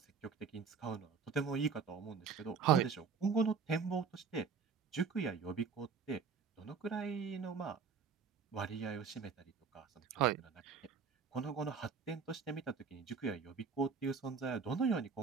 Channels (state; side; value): quieter; left; 5.7 dB